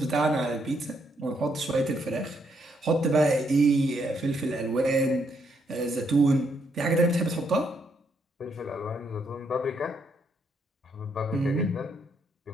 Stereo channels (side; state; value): both; normal; correlation 0.75